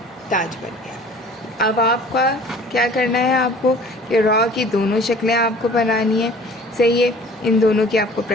ताज बन गया। अब आपका क्या करना है, आपको कि रॉ की दोनों शक्लें आपको बनानी है, सही है। इन दोनों की आपको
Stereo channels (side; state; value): both; normal; correlation 0.48